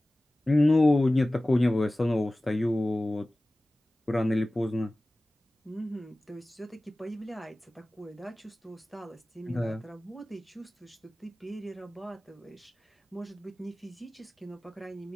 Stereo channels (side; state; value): both; normal; correlation 0.97